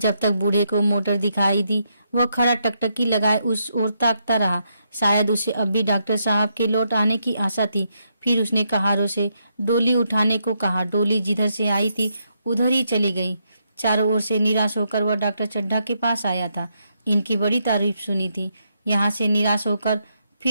तक बूढ़े को मोटर दिखाई दी, वह खड़ा टकटकी लगाए उस ओर ताकता रहा। शायद उसे अब भी डॉक्टर साहब के लौट आने की आशा थी। फिर उसने कहारों से डोली उठाने को कहा। डोली जिधर से आई थी उधर ही चली गई। चारों ओर से निराश होकर वह डॉक्टर चड्ढा के पास आया था। इनकी बड़ी तारीफ सुनी थी। यहाँ से निराश होकर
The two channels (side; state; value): both; inverted; correlation -0.79